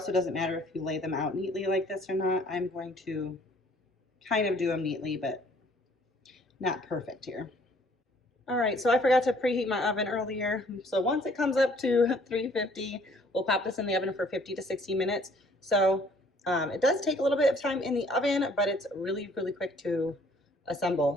doesn't matter if you lay them out neatly like this or not. I'm going to kind of do them neatly, but not perfect here. All right, so I forgot to preheat my oven earlier. So once it comes up to 350, we'll pop this in the oven for 50 to 60 minutes. So it does take a little bit of time in the oven, but it's really, really quick to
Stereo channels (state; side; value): normal; both; correlation 0.59